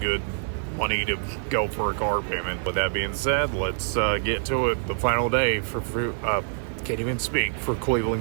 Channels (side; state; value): left; silent; digital silence